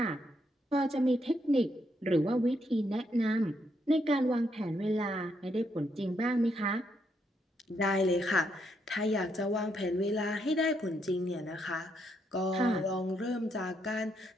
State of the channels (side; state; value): both; normal; correlation 0.77